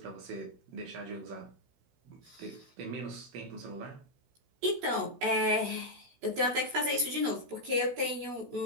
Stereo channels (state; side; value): late; left; 16 ms